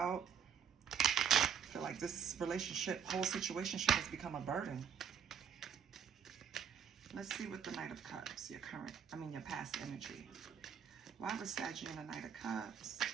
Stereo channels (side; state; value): left; quieter; 7.8 dB